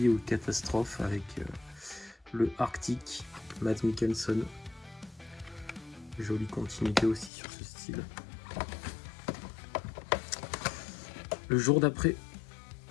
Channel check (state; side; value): drops out; right; at 7.3 s